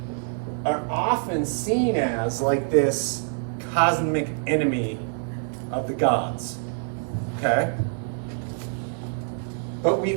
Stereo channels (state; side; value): silent; left; 61 dB below the other